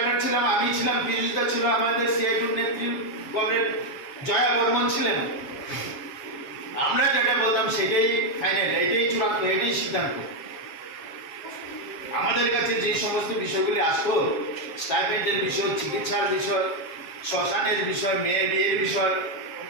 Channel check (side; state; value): right; late; 7.3 ms